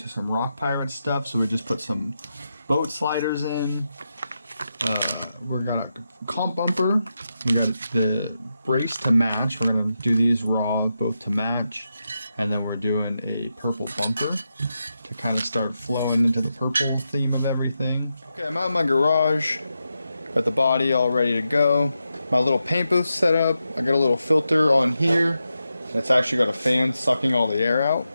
some Rock Pirates stuff, so we just put some boat sliders in. We got a comp bumper. We got the brace to match. We're gonna do these raw, both to match, and then we're doing a purple bumper to kind of start flowing into the purple theme of everything. Okay, I'm out in my garage. Got the body all ready to go. My little paint booth set up. I got a little filter on here. It's actually got a fan sucking all the air out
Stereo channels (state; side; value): inverted; both; correlation -0.87